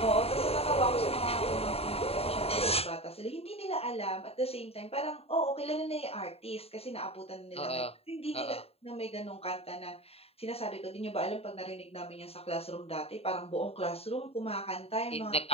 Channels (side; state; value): right; late; 0.29 ms